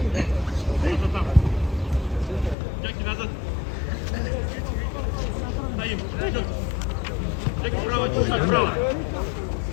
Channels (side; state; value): right; drops out; at 2.6 s